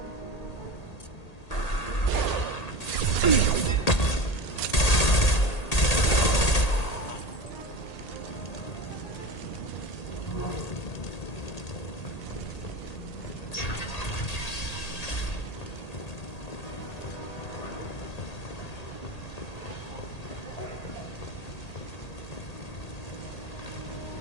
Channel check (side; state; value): right; late; 1.8 ms